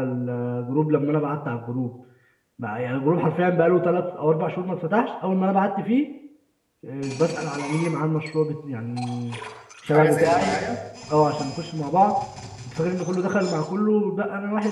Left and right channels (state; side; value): identical; both; correlation 1.00